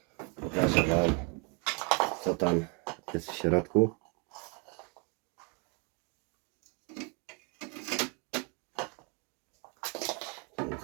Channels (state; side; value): quieter; left; 34.7 dB